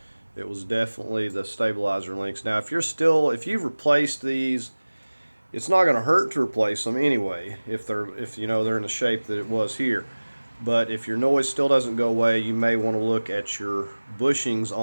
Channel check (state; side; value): inverted; both; correlation -1.00